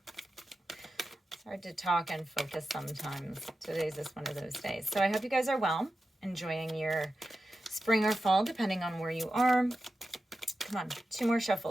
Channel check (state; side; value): normal; both; correlation 0.92